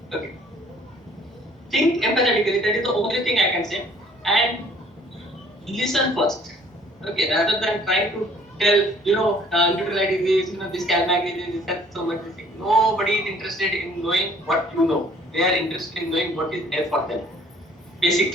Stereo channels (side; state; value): both; normal; correlation 0.56